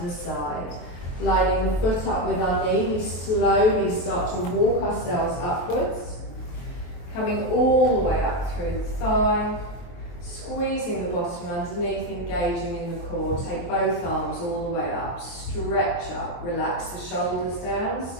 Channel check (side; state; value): right; late; 23 ms